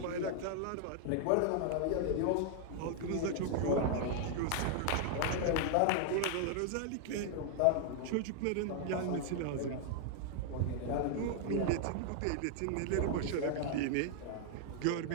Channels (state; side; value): different; both; correlation 0.00